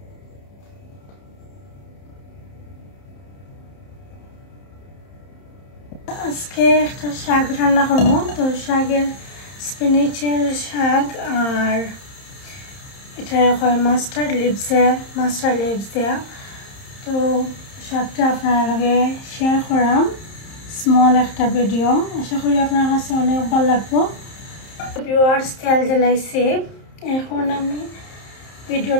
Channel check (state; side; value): late; right; 30 ms